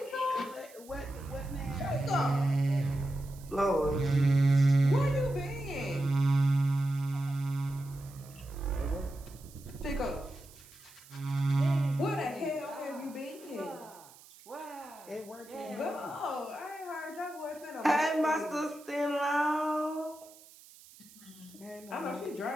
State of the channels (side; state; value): right; noise; hiss, 22 dB below the sound